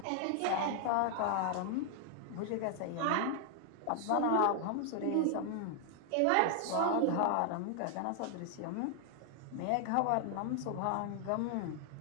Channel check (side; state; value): both; different; correlation 0.00